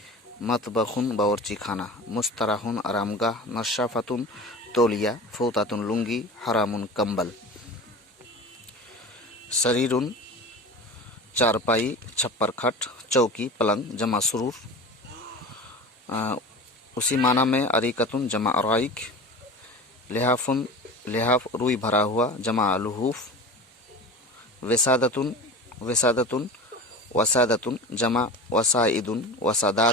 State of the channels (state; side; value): normal; both; correlation 0.32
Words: مطبخ باورچی خانہ، مستراح آرام گاہ، نشافۃ تولیہ، فوطۃ لنگی، حرام کمبل۔ سریر چارپائی، چھپر کھٹ، چوکی پلنگ جمع سرور۔ اسی معنی میں اریکتن جمع ارائک، لحاف روئی بھرا ہوا جمع لحوف، وسادتن وسادتن جمع وسائدن